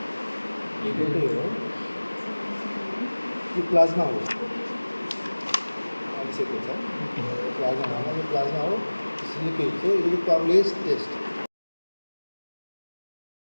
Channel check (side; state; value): both; inverted; correlation -1.00